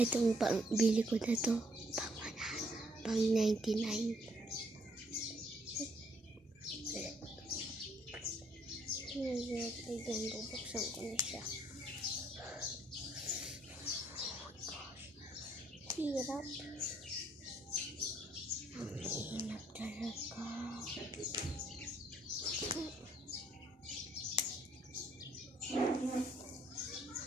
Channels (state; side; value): normal; both; correlation 0.67